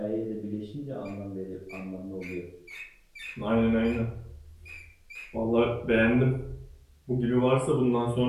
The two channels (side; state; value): both; identical; correlation 1.00